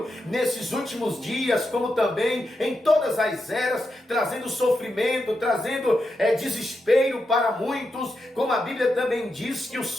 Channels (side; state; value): both; normal; correlation 0.86